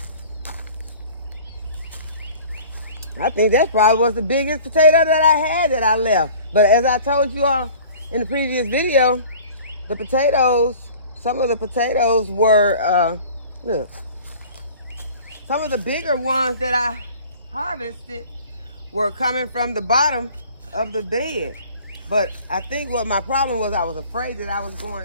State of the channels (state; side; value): inverted; both; correlation -0.46